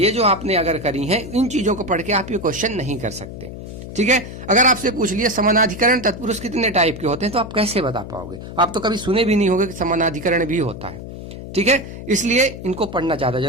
जो आपने अगर करी है, इन चीजों को पढ़ के आप ये क्वेश्चन नहीं कर सकते। ठीक है, अगर आपसे पूछ लिया समानाधिकरण तत्पुरुष कितने टाइप के होते हैं तो आप कैसे बता पाओगे? आप तो कभी सुने भी नहीं होंगे कि समानाधिकरण भी होता है। ठीक है, इसलिए इनको पढ़ना ज्यादा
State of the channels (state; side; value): noise; left; hum, 11 dB below the sound